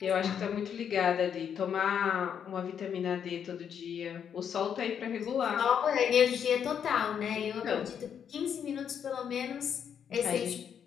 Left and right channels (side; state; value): right; quieter; 8.1 dB